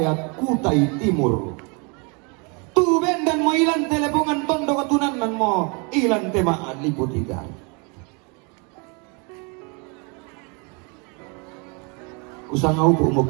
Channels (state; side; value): quieter; left; 32.6 dB